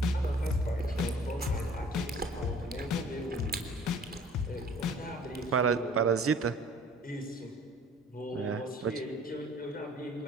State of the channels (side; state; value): both; normal; correlation 0.51